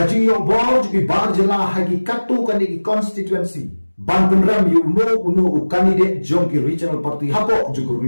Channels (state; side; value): inverted; both; correlation -1.00